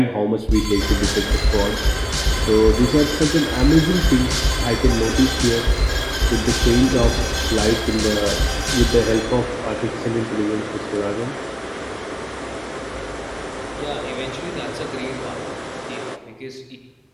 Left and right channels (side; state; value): both; identical; correlation 1.00